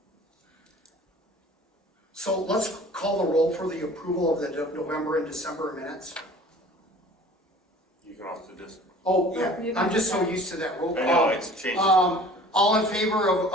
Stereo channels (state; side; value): normal; both; correlation 0.47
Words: So let's call the roll for the approval of the November and December minutes. You can also just. Oh, yeah, I'm just so used to that roll call. I know, it's changed. All in favor